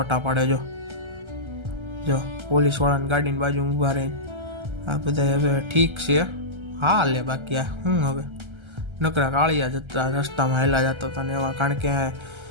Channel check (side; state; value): left; late; 1.3 ms